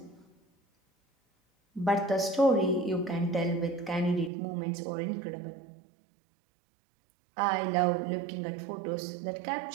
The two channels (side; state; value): left; drops out; at 4.3 s